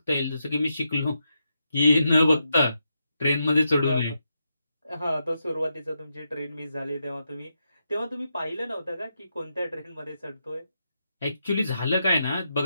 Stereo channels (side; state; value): both; inverted; correlation -0.84